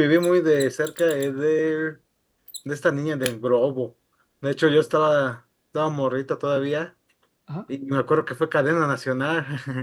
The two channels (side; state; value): both; identical; correlation 1.00